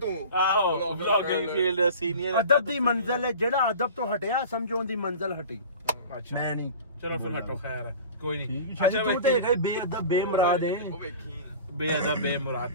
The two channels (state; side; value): inverted; both; correlation -0.39